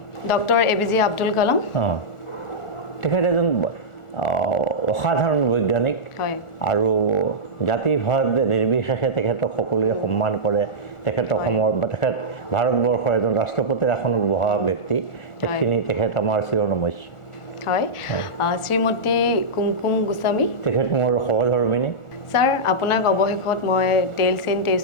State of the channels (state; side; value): late; right; 1.4 ms